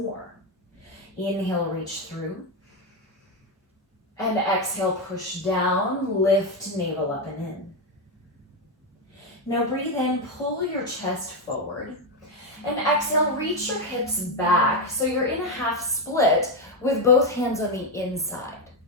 more. Inhale, reach through. And exhale, push down, lift navel up and in. Now breathe in, pull your chest forward. And exhale, reach your hips back so you're in a half split with both hands on the inside.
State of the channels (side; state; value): both; normal; correlation 0.08